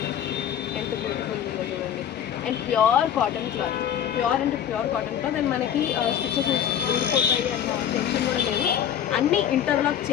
ఎంత బ్యూటిఫుల్ ఉందో చూడండి. And pure cotton cloth, pure అంటే ప్యూర్ కాటన్ క్లాత్. అండ్ మనకి స్టిచెస్ ఊడిపోతాయి అన్న టెన్షన్ కూడా లేదు. అన్నీ ఇంటర్లాక్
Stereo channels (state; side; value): quieter; right; 9.6 dB